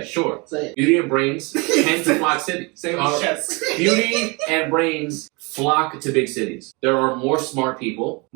sure. Say it. Beauty and brains tend to flock cities. Say it with chest. Beauty and brains flock to big cities. There are more smart people,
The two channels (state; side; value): quieter; left; 28.4 dB